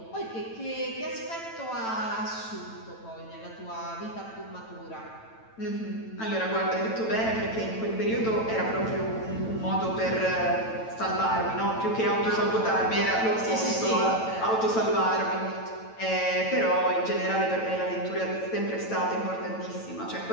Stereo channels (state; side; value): late; right; 9.0 ms